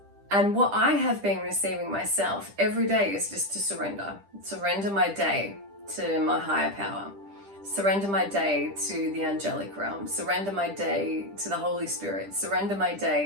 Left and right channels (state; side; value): late; left; 10 ms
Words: and what I have been receiving myself every day is just to surrender my day to my higher power, surrender my day to the angelic realm, surrender my day to the Holy Spirit, surrender my